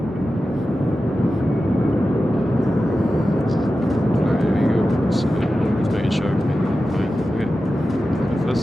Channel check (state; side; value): normal; both; correlation 0.93